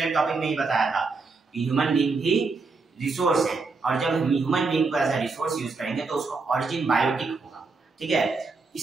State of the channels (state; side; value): quieter; left; 4.1 dB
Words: टॉपिक में ही बताया था कि ह्यूमन बीइंग भी रिसोर्स है और जब हम ह्यूमन बीइंग को एज अ रिसोर्स यूज करेंगे तो उसका ऑरिजिन बायोटिक होगा। ठीक है,